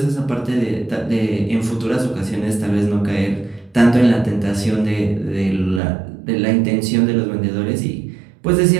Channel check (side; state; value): left; drops out; at 5.8 s